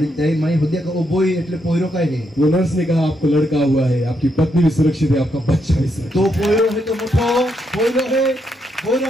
त्याई माई होद्या का ओ बोय એટલે पोयरो काय है? वो नर्स ने कहा आपको लड़का हुआ है, आपकी पत्नी भी सुरक्षित है, आपका बच्चा भी सुरक्षित तो पोयरो है तो मोठो पोयरो है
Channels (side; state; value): both; normal; correlation 0.79